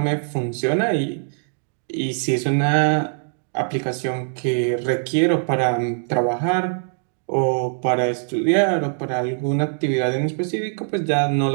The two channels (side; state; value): left; silent; digital silence